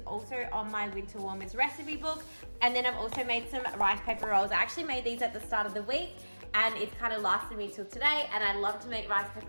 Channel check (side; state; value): both; inverted; correlation -1.00